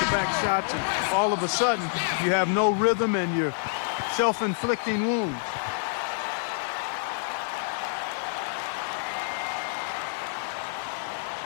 shots, and all of a sudden you have no rhythm and you're self-inflicting wounds.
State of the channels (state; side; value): silent; right; 60 dB below the other